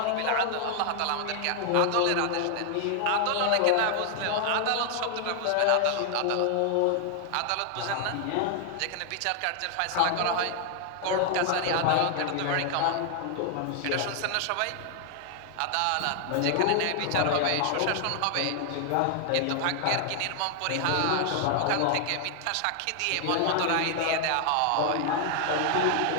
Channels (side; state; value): both; different; correlation 0.00